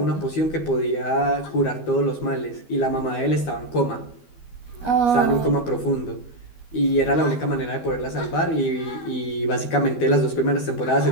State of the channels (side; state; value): right; late; 12 ms